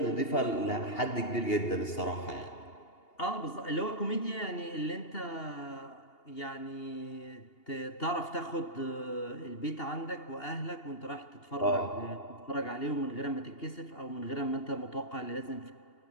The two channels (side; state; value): right; late; 2.8 ms